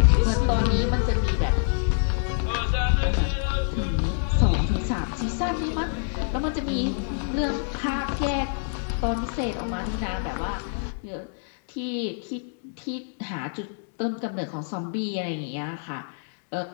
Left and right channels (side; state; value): right; silent; digital silence